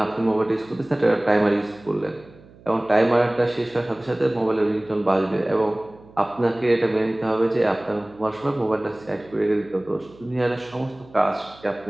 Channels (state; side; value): noise; right; hum, 24 dB below the sound